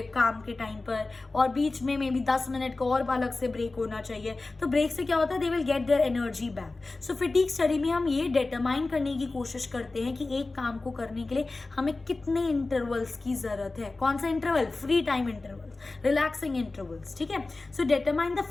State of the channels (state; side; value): quieter; right; 3.4 dB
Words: काम के टाइम पर, और बीच में मे बी 10 मिनट का और अलग से ब्रेक होना चाहिए। तो ब्रेक से क्या होता है, they will get their energy back. So फिटीग study में हम ये डिटरमाइन करने की कोशिश करते हैं कि एक काम को करने के लिए हमें कितने इंटरवल्स की जरूरत है। कौन सा interval, free time intervals, relaxing intervals, ठीक है। सो डिटरमाइन द